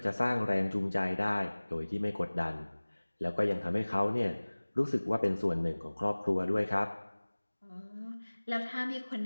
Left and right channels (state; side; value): inverted; both; correlation -1.00